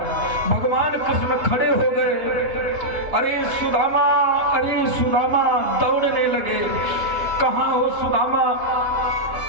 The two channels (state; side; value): late; left; 2.9 ms